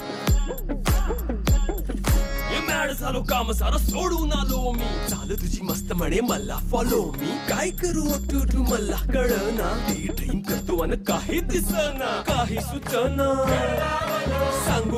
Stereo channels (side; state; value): both; identical; correlation 1.00